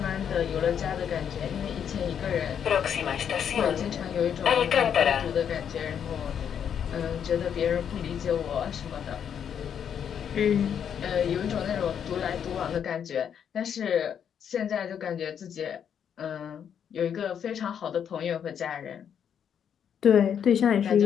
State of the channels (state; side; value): quieter; right; 8.3 dB